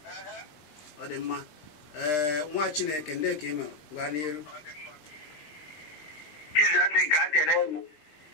Ọ dị mma. Nwa Chineke ndị ka ị mere gwa n'iru.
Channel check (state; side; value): late; right; 20 ms